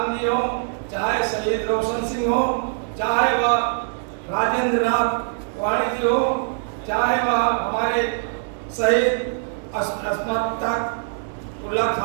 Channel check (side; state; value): left; silent; digital silence